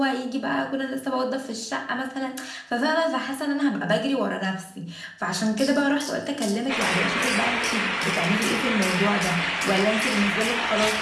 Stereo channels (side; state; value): both; identical; correlation 1.00